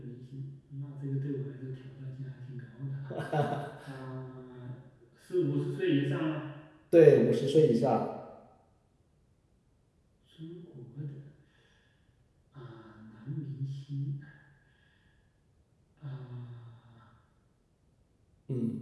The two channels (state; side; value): identical; both; correlation 1.00